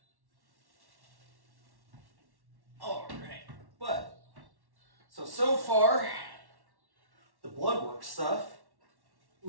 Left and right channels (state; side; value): late; left; 1.1 ms